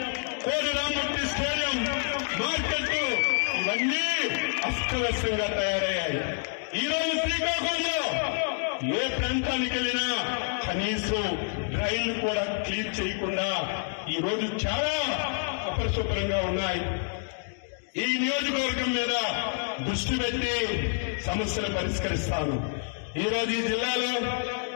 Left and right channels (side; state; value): right; silent; 59 dB below the other